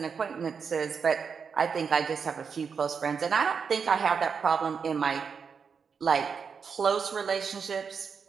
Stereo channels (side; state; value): left; quieter; 6.1 dB